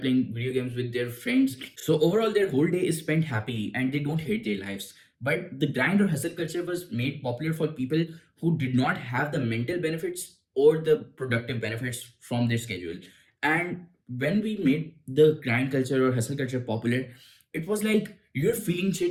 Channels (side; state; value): both; identical; correlation 1.00